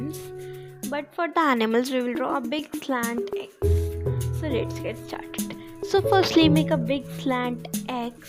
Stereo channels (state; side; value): identical; both; correlation 1.00